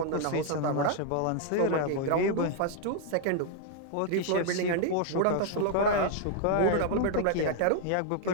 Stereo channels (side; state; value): both; different; correlation 0.00